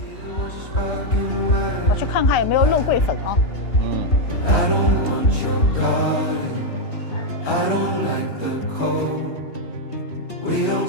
我去看看有没有肉桂粉啊。I don't want your garden. I don't like the cold. We don't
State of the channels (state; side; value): late; right; 3.2 ms